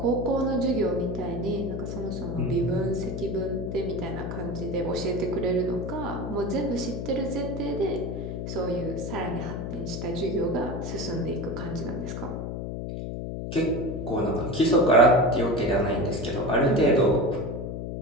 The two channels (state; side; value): noise; left; hum, 5 dB below the sound